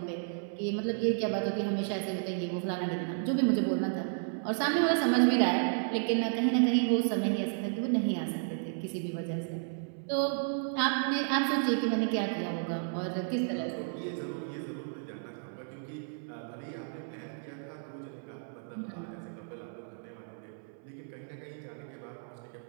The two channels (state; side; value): silent; left; 56 dB below the other